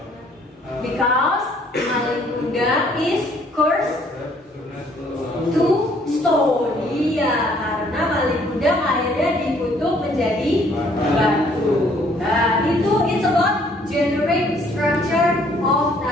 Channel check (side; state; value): both; normal; correlation 0.62